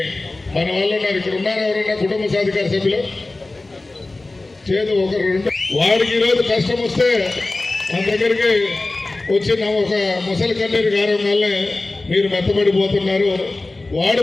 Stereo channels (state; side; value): quieter; right; 3.1 dB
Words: మన వాళ్ళు ఉన్నారు. ఇక్కడ ఉన్నారు ఎవరన్నా కుటుంబ సాధికార సభ్యులు? చేదు ఒకరు రెండు. వాడికి ఈరోజు కష్టం వస్తే మన దగ్గరికి వచ్చిన ఒక ముసలి కన్నీరు గారం వల్లే మీరు మెత్తబడిపోతున్నారు. వాడు